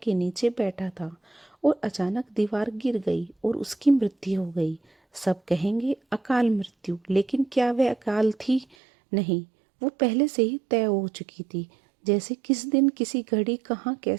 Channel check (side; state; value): left; drops out; at 8.8 s